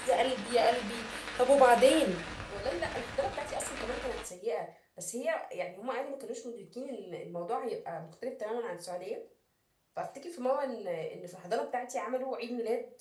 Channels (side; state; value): both; identical; correlation 1.00